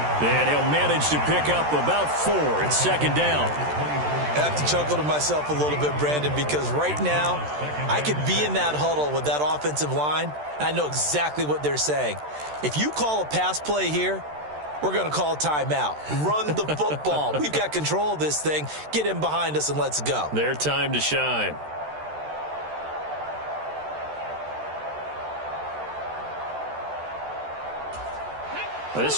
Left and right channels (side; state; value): left; late; 13 ms